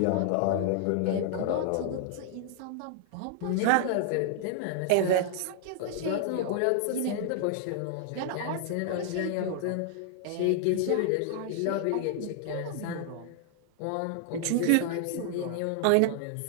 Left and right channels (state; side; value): different; both; correlation 0.00